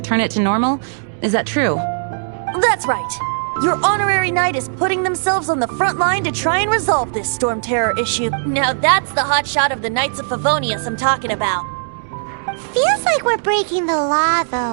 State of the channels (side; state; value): left; silent; 67 dB below the other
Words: it to normal? Is that true? That's right. Your honorary knight is putting themselves on the front line to try and resolve this Storm Terror issue. Now that's the hotshot of the Knights of Favonius I'm talking about. Feels like we're breaking the law,